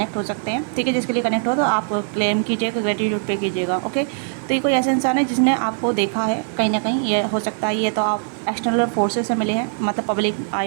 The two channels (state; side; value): silent; left; digital silence